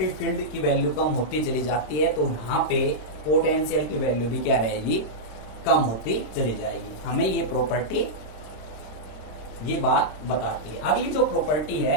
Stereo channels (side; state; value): right; late; 26 ms